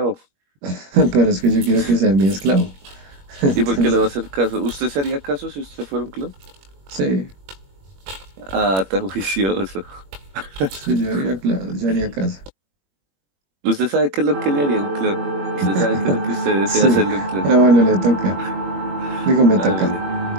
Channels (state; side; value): late; left; 21 ms